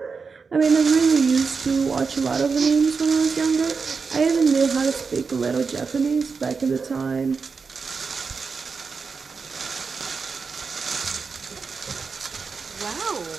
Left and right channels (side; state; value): left; quieter; 5.1 dB